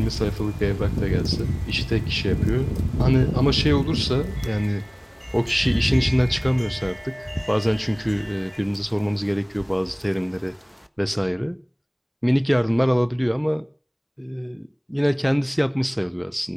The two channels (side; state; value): both; identical; correlation 1.00